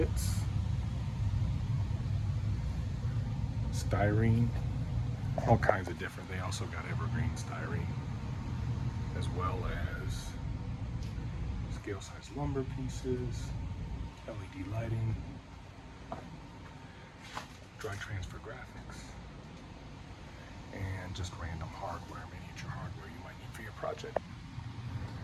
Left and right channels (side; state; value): both; identical; correlation 1.00